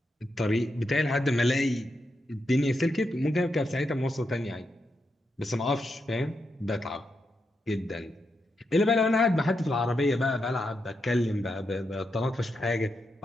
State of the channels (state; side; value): normal; both; correlation 0.84